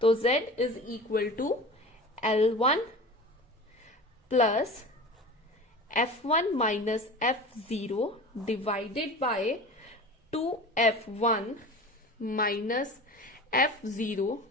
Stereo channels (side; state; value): both; normal; correlation 0.35